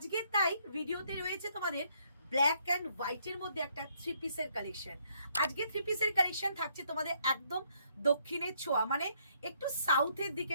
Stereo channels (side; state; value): both; inverted; correlation -0.70